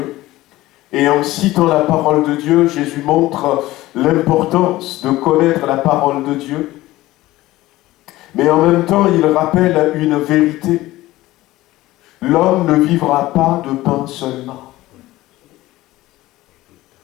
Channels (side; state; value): right; quieter; 17.2 dB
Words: Et en citant la parole de Dieu, Jésus montre l'importance de connaître la parole de Dieu. Mais en même temps, il rappelle une vérité. L'homme ne vivra pas de pain seulement.